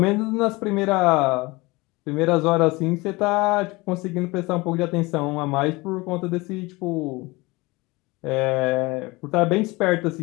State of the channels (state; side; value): quieter; right; 23.2 dB